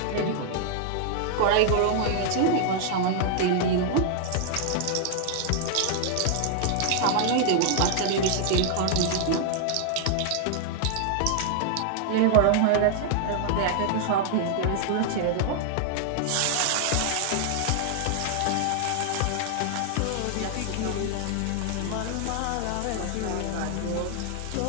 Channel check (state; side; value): different; both; correlation 0.00